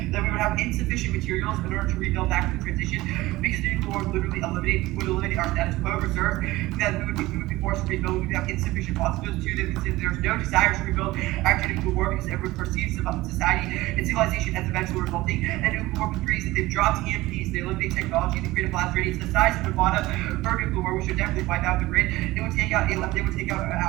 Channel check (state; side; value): quieter; left; 18.7 dB